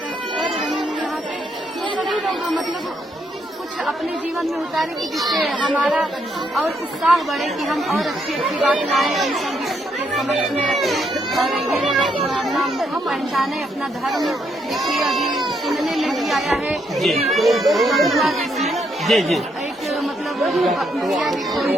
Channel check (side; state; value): both; normal; correlation 0.75